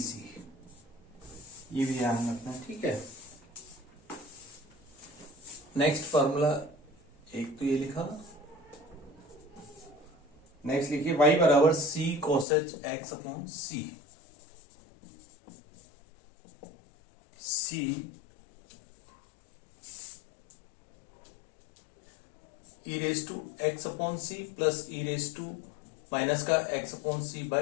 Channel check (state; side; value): drops out; right; at 12.5 s